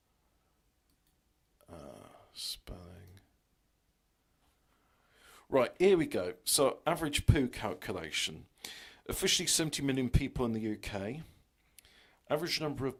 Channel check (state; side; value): identical; both; correlation 1.00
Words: Spelling. Right, here we go. So, average poo calculation. Officially 70 million people in the UK. Average number of